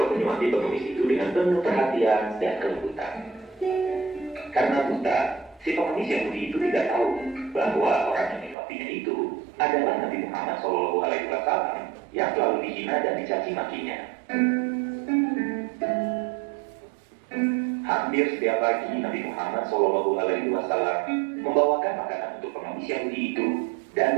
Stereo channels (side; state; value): left; drops out; at 8.6 s